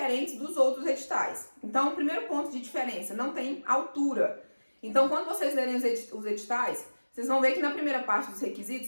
dos outros editais. Então, o primeiro ponto de diferença, não tem altura. Então, quando vocês lerem os editais, vocês vão ver que na primeira parte dos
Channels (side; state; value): both; inverted; correlation -1.00